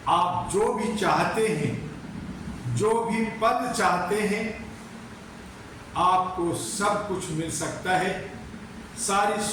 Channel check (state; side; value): identical; both; correlation 1.00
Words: आप जो भी चाहते हैं, जो भी पद चाहते हैं, आपको सब कुछ मिल सकता है, सारी